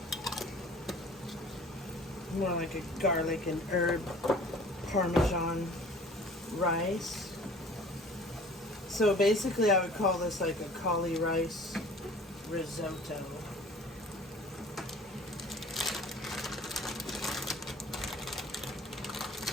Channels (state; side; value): normal; both; correlation 0.48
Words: More like a garlic and herb Parmesan rice. So basically I would call this like a cauli rice risotto.